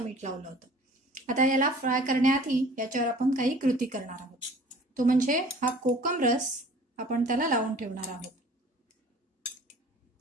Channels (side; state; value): both; normal; correlation 0.48